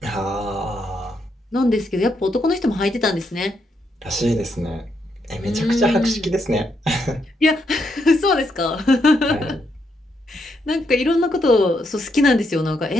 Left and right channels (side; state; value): both; normal; correlation 0.78